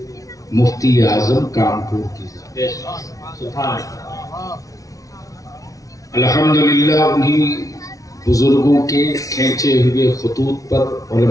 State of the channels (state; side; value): late; right; 0.17 ms